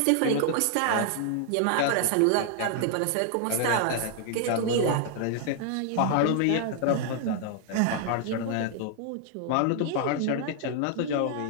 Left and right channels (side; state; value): both; different; correlation 0.00